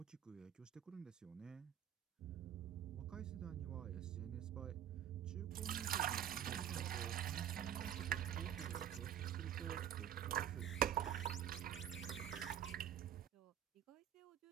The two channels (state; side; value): quieter; left; 10.1 dB